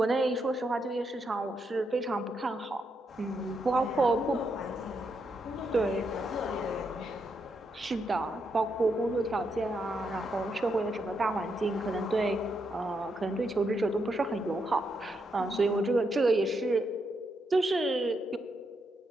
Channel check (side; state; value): both; normal; correlation 0.81